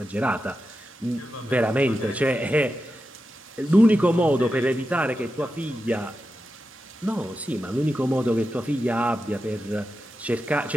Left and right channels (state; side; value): normal; both; correlation 0.90